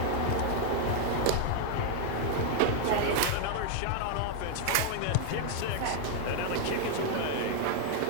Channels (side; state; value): both; different; correlation 0.00